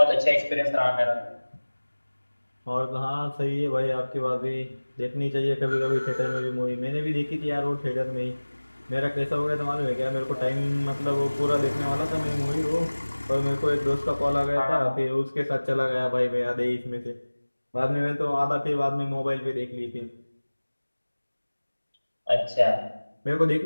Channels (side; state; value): both; inverted; correlation -1.00